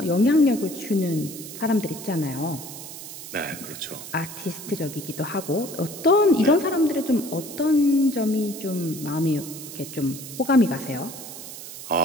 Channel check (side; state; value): right; noise; hiss, 12 dB below the sound